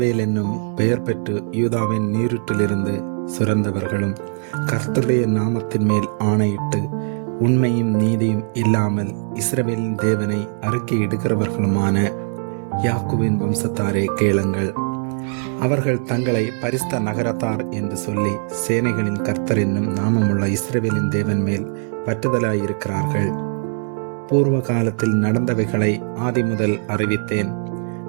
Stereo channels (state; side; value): silent; left; 65 dB below the other